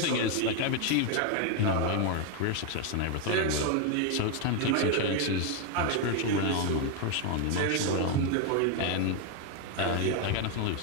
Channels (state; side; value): different; both; correlation 0.01